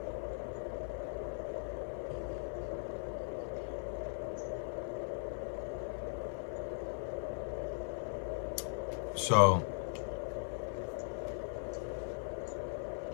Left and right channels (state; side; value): silent; right; digital silence